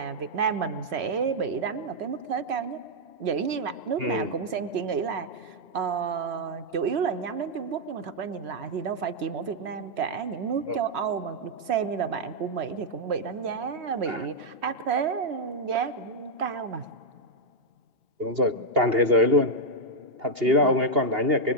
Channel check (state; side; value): late; left; 3.1 ms